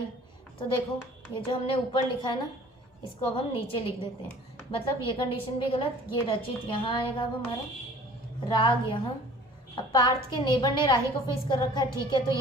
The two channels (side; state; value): both; normal; correlation 0.49